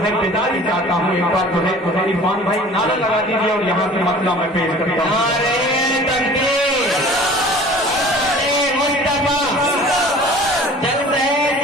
बेदारी चाहता हूँ, एक बार जो है इरफान भाई नारा लगा दीजिए और यहाँ से मसला मैं पेश करता हूँ।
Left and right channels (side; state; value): both; normal; correlation 0.45